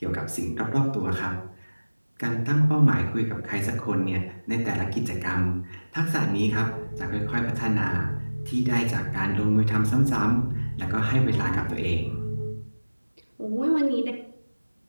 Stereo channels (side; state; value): both; inverted; correlation -1.00